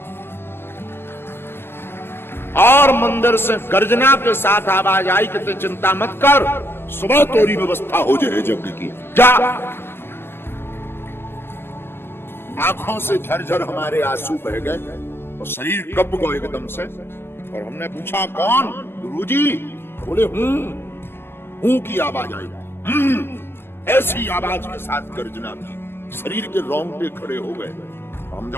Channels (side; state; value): right; late; 0.11 ms